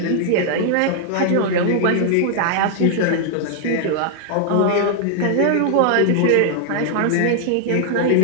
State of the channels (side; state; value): both; different; correlation 0.00